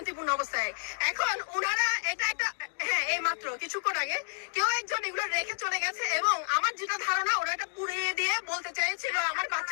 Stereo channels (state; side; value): silent; right; digital silence